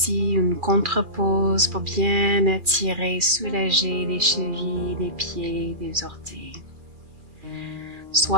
une contre-pause pour bien étirer, soulager les chevilles, les pieds, les orteils.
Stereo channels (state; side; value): late; left; 2.4 ms